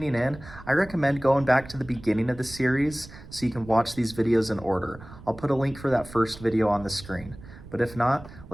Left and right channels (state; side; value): noise; right; rumble, 17 dB below the sound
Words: in, I recommend going back to the beginning of the series so you can watch these videos in order. I'll put a link for that first video on the screen. But if not,